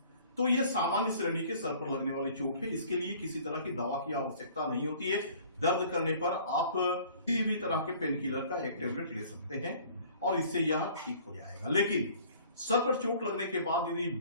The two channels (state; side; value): inverted; both; correlation -0.52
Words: तो यह सामान्य श्रेणी के सर पर लगने वाली चोट है। इसके लिए किसी तरह की दवा की आवश्यकता नहीं होती है। दर्द करने पर आप किसी भी तरह के पेन किलर का एक टेबलेट ले सकते हैं और इससे यह ठीक हो जाएगा। लेकिन सर पर चोट लगने के बाद यदि